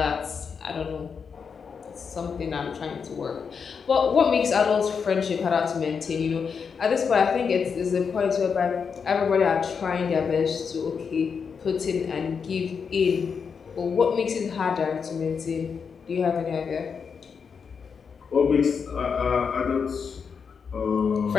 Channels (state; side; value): quieter; right; 6.1 dB